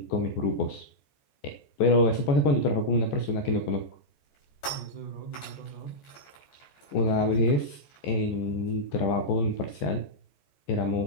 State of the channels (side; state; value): right; late; 14 ms